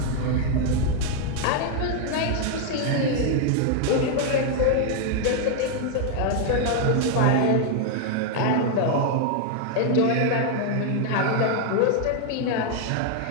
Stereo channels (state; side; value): different; both; correlation 0.00